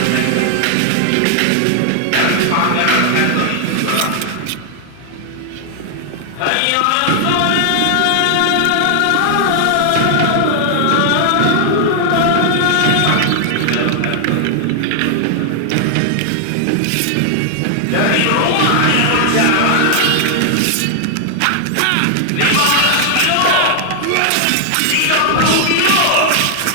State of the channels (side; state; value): both; different; correlation 0.00